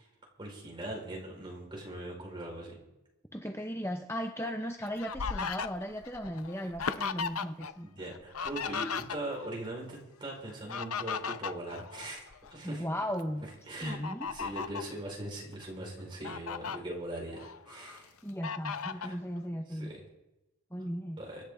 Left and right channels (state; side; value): normal; both; correlation 0.48